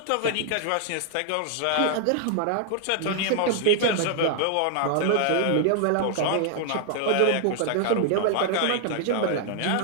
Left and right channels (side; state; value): both; different; correlation 0.00